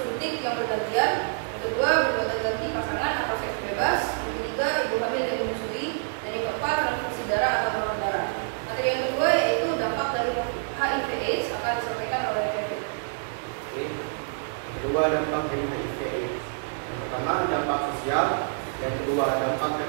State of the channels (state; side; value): silent; left; digital silence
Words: yang bergantian. Yang kedua berbuat ganti pasangan atau seks bebas. Yang ketiga ibu hamil yang menyusui. Dan yang keempat transfusi darah atau donor darah. Materi yang kedua yaitu dampak dari HIV/AIDS akan disampaikan oleh Kevin. Oke. Kedua, dampak dari HIV/AIDS. Yang pertama, dampak sosial. Yang kedua, dampak